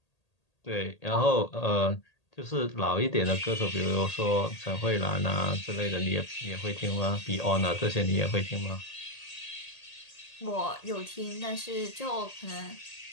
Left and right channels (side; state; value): right; late; 1.8 ms